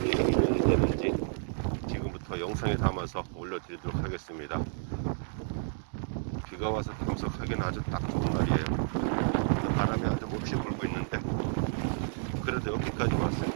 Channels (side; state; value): left; silent; digital silence